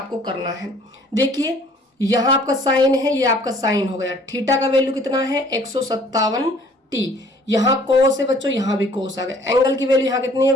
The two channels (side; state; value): both; normal; correlation 0.56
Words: करना है। देखिए यहाँ आपका साइन है, ये आपका साइन हो गया। थीटा का वैल्यू कितना है, 157 टी। यहाँ कोस है बच्चों, यहाँ भी कोस आ गया। एंगल की वैल्यू यहाँ कितनी है,